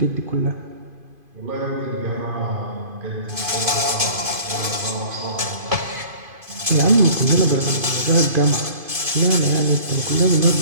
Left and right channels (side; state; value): left; late; 2.5 ms